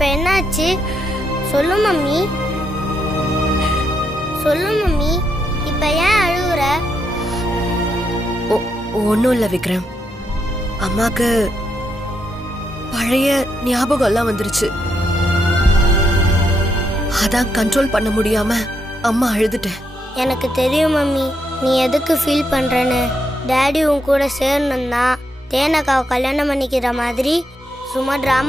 என்னாச்சு? சொல்லு மம்மி. சொல்லு மம்மி. இப்ப ஏன் அழுகுற? ஒன்றும் இல்லை விக்ரம். அம்மாக்கு பழைய ஞாபகம் எல்லாம் வந்துருச்சு. அதான் கண்ட்ரோல் பண்ண முடியாம அம்மா அழுதுட்டேன். எனக்கு தெரியும் மம்மி நீ எதுக்கு ஃபீல் பண்றேன்னு. டாடி உன் கூட சேரணும்னா தேனக்காவை கல்யாணம் பண்ணிக்கிற மாதிரி சும்மா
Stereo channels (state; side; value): normal; both; correlation 0.80